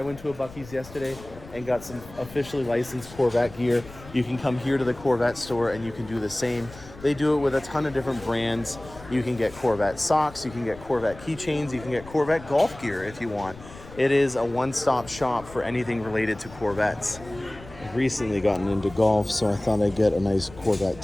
went to a Buc-ee's yesterday and got some officially licensed Corvette gear. You can come here to the Corvette store and you can do the same. They do it with a ton of different brands. You can get Corvette socks, you can get Corvette keychains, you can get Corvette golf gear if you want. It is a one-stop shop for anything related to Corvettes. I've recently gotten into golf, so I thought I'd get a nice Corvette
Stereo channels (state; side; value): noise; left; rumble, 18 dB below the sound